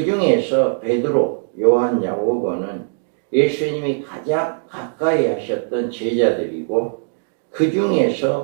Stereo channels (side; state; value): left; silent; digital silence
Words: 중에서 베드로, 요한, 야고보는 예수님이 가장 가까이 하셨던 제자들이고 그